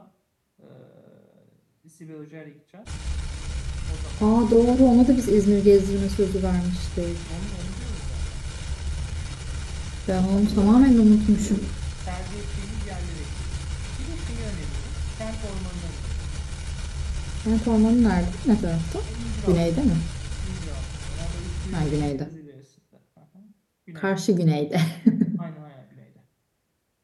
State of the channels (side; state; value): both; identical; correlation 1.00